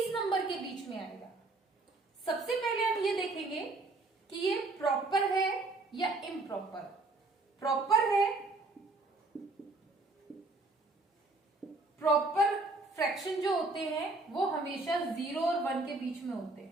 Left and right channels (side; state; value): left; quieter; 3.2 dB